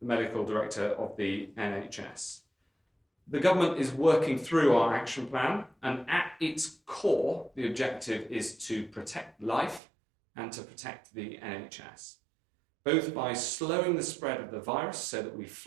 the Medical Director of the NHS. The government is working through our action plan, and at its core, the objective is to protect life and to protect the NHS, both by slowing the spread of the virus so that we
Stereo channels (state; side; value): drops out; left; at 9.8 s